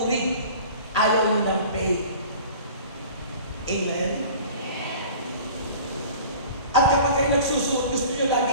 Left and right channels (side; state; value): both; inverted; correlation -0.43